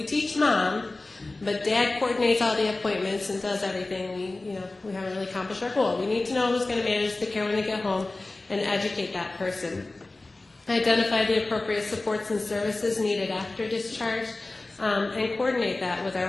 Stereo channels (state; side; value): quieter; right; 3.1 dB